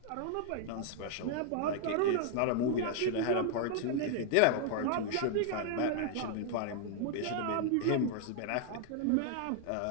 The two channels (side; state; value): both; different; correlation 0.00